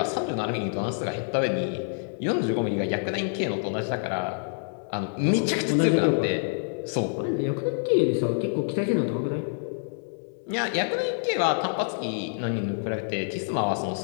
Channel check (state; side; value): silent; right; digital silence